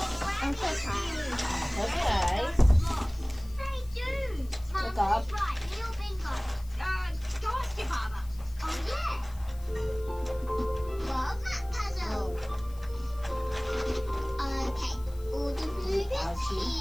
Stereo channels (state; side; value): noise; left; hiss, 23 dB below the sound